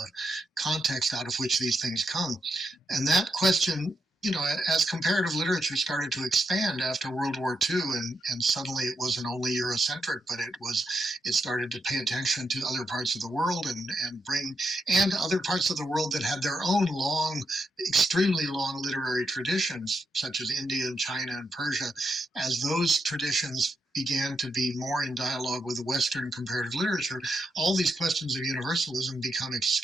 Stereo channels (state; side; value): normal; both; correlation 0.83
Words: context out of which these things come? And that question, as comparative literature started to expand after World War II, and suddenly it wasn't only Eurocentric, but it started to pay attention to other parts of the world and other parts of the world that had their own extremely long literary traditions, such as India and China and Persia. As those traditions began to be more in dialogue with Western comparative literature, all these questions of universalism become